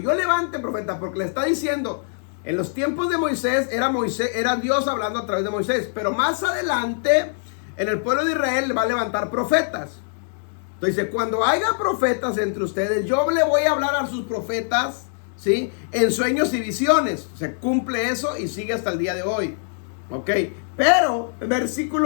levante profeta, porque le está diciendo, en los tiempos de Moisés, era Dios hablando a través de Moisés, pero más adelante, en el pueblo de Israel va a levantar profetas. Entonces dice, cuando haya profetas entre ustedes, yo le voy a hablar a sus profetas, ¿sí? En sueños y visiones. Se cumple eso y sigue hasta el día de hoy. Ok, pero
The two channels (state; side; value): silent; right; digital silence